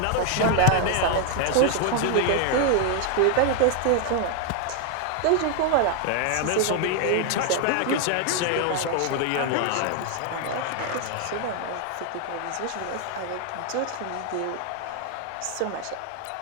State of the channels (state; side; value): different; both; correlation 0.00